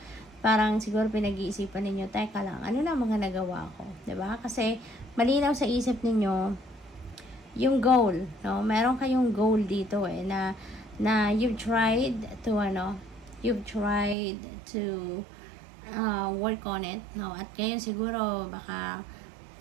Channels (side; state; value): left; drops out; at 14.2 s